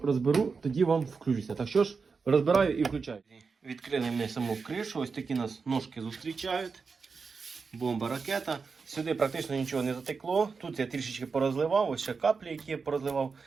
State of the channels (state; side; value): quieter; left; 5.0 dB